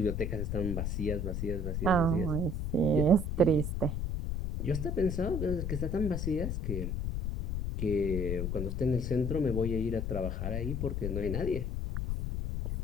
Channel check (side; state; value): left; noise; rumble, 1 dB below the sound